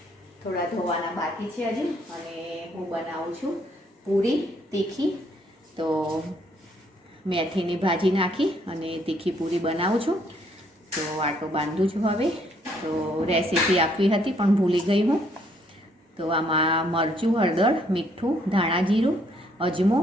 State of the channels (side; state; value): both; normal; correlation 0.68